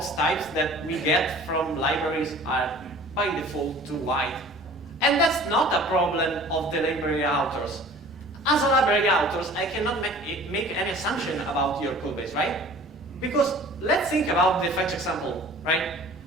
types that we get from libraries are by default too wide. And that's not a problem of the library authors. as a library authors, I cannot make any assumption about your code base, right? Because let's think about the fetch example, right?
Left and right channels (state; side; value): normal; both; correlation 0.46